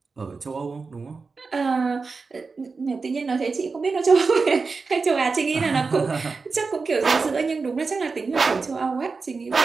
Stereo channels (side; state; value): left; quieter; 4.5 dB